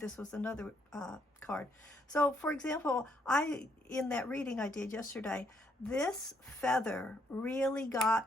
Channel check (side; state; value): both; normal; correlation 0.72